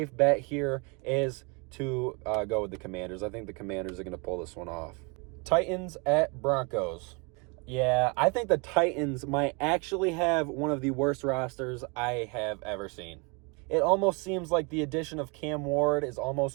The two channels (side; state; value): left; quieter; 31.4 dB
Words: bet here is to go with the Commanders. I think the Commanders are going to pull this one off. Titans at Broncos. Yeah, I think the Titans might actually have one of the worst rosters I have ever seen. It almost seems like the addition of Cam Ward is